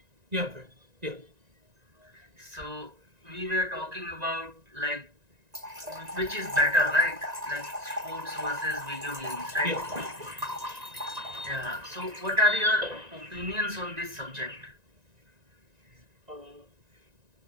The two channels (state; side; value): late; left; 1.9 ms